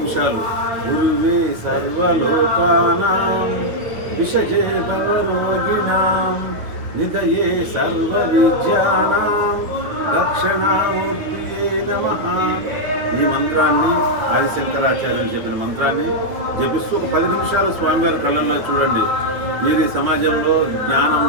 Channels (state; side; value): late; left; 9.5 ms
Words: గురువే సర్వలోకానాం విషజే భవరోగిణాం నిదయే సర్వ విద్యానాం దక్షిణామూర్తియే నమః ఈ మంత్రాన్ని ఆదిశంకరాచార్యులు చెప్పిన మంత్రాన్ని జపిస్తూ ఒక 10 నిమిషాలు స్వామివారి కళ్ళల్లో చూడండి. మీరు ఈ సమాజంలో